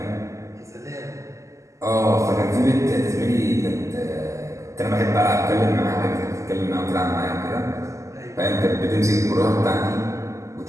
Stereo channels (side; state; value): left; late; 0.15 ms